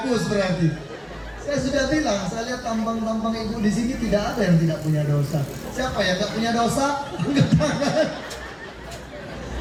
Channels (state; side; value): identical; both; correlation 1.00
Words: berarti. Saya sudah bilang, saya lihat tampang-tampang ibu di sini tidak ada yang tidak punya dosa. Siapa yang gak punya dosa? Angkat tangan.